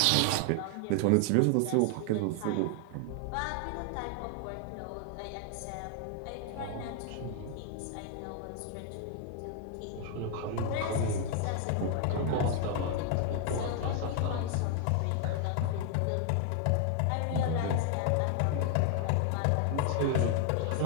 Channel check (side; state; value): both; different; correlation 0.00